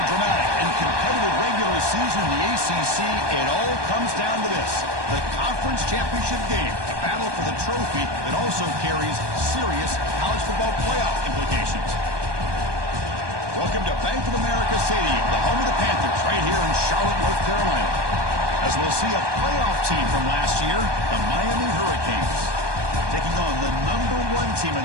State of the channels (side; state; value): left; late; 1.2 ms